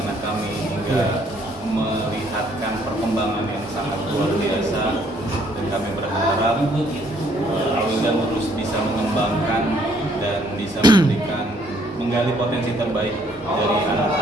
kami hingga melihatkan perkembangan yang sangat luar biasa, dan kami berharap Al-Wildan terus bisa mengembangkan dan bisa menggali potensi terbaik dari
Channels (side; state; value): both; normal; correlation 0.65